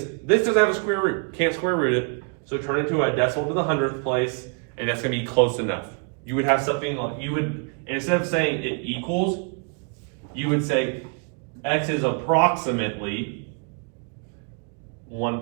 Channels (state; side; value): quieter; left; 39.9 dB